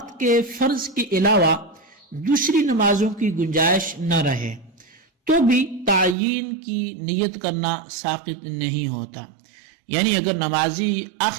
کے فرض کے علاوہ دوسری نمازوں کی گنجائش نہ رہے تو بھی تعین کی نیت کرنا ساقط نہیں ہوتا۔ یعنی اگر نمازی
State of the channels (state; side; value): drops out; left; at 6.2 s